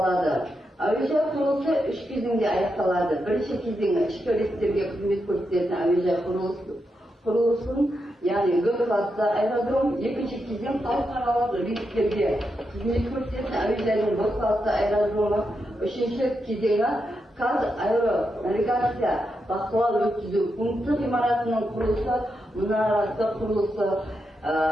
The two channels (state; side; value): normal; both; correlation 0.85